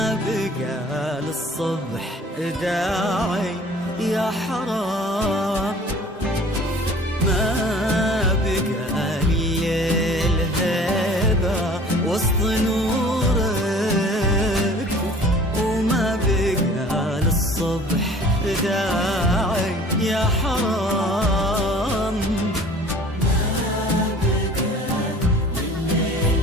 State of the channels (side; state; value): both; normal; correlation 0.48